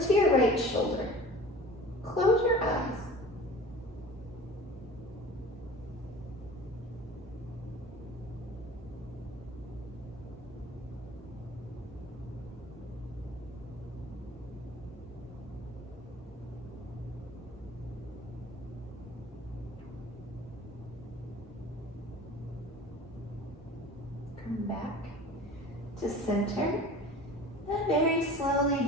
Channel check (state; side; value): normal; both; correlation 0.41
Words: to your right shoulder. Close your eyes. Come back to center. And very slowly,